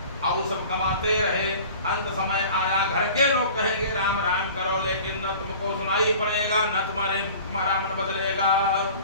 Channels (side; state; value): both; inverted; correlation -0.43